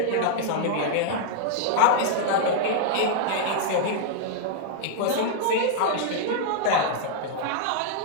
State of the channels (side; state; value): both; different; correlation -0.01